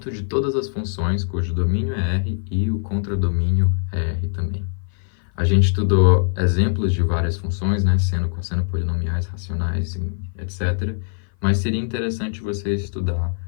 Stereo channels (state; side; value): silent; right; 56 dB below the other